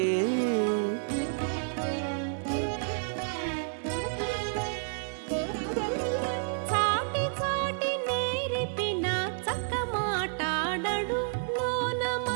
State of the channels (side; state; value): left; silent; digital silence